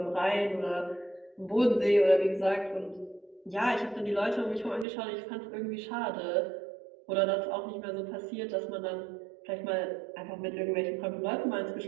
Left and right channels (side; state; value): left; drops out; at 4.9 s